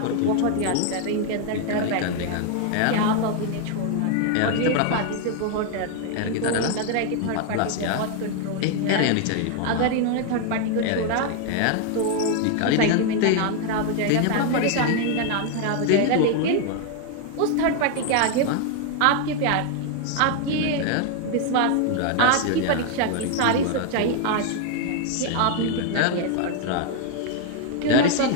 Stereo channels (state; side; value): different; both; correlation 0.01